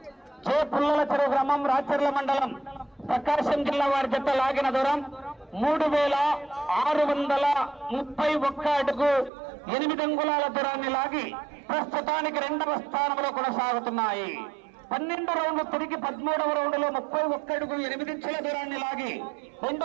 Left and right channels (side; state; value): left; drops out; at 9.3 s